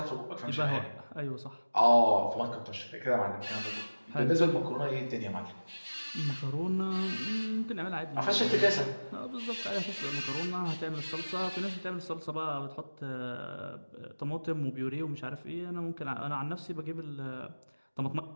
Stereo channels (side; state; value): both; inverted; correlation -1.00